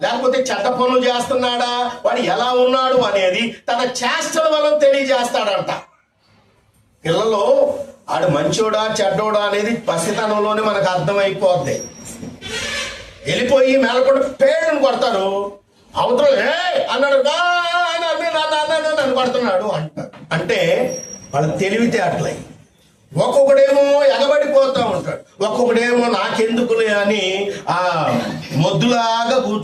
లేకపోతే చెడ్డ పనులు చేస్తున్నాడా, వాడు ఎలా ఉన్నాడు అనేది తన చేష్టల వలన తెలియజేస్తాడంట. పిల్లలు ఆడు మంచోడా చెడ్డోడా అనేది పసితనంలోనే మనకు అర్థమైపోద్ది. వెళ్ళిపోయి మేలకొండ పేరుని కొడతారు, అవతల అన్నాడు నన్ను కొడుతున్నాడు అంటారు. అంటే వాళ్ళ తెలివితే అట్లయి. ఒక్కొక్కడేమో ఎగబడిపోతా ఉంటాడు, ఒక్కొక్కడేమో నాకెందుకులే అని ఆ మొద్దులాగా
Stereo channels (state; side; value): identical; both; correlation 1.00